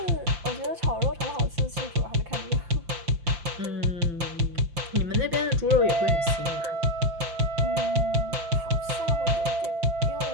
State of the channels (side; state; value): left; late; 5.9 ms